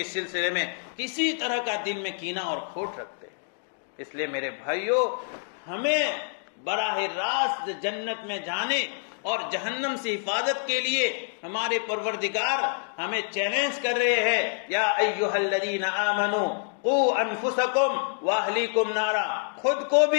سلسلے میں کسی طرح کا دل میں کینہ اور کھوٹ رکھتے ہیں۔ اس لیے میرے بھائیوں، ہمیں براہ راست جنت میں جانے اور جہنم سے حفاظت کے لیے ہمارے پروردگار ہمیں چیلنج کر رہے ہیں، یا ایھا الذین آمنوا قوا انفسکم واہلیکم نارا، خود کو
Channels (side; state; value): right; silent; digital silence